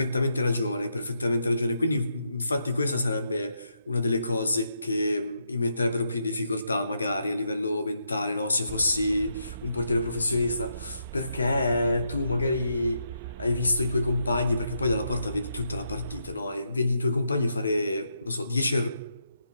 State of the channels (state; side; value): inverted; both; correlation -0.80